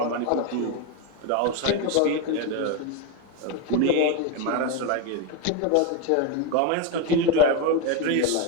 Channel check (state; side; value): different; both; correlation 0.02